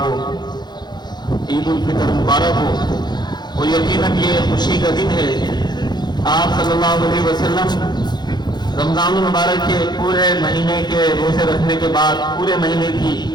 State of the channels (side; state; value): right; late; 0.21 ms